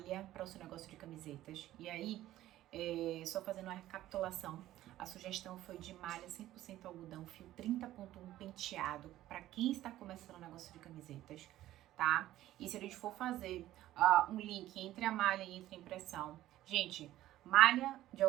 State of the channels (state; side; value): quieter; left; 14.3 dB